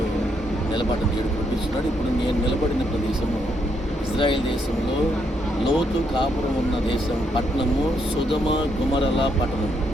నిలబడ్డ దేవుడు చూపిస్తున్నాడు. ఇప్పుడు నేను నిలబడిన ప్రదేశము ఇజ్రాయెల్ దేశంలో లోతు కాపురం ఉన్న దేశం పట్టణము సొదొమ గొమొర్రాల పట్టణం.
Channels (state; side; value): normal; both; correlation 0.75